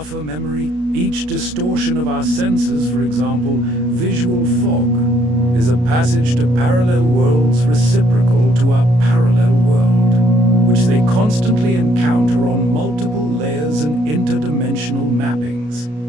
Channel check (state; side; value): late; left; 33 ms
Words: memory. Each distortion of our senses, for example, visual fog, is a passage to parallel worlds reciprocal to our parallel world, which they constantly encounter on multiple layers and interdimensional mappings,